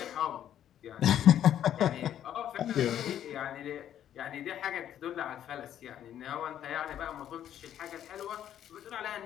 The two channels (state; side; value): quieter; right; 10.6 dB